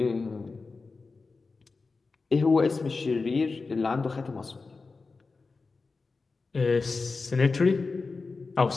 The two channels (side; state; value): right; quieter; 4.1 dB